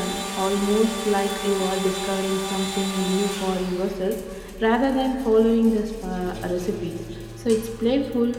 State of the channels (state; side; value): identical; both; correlation 1.00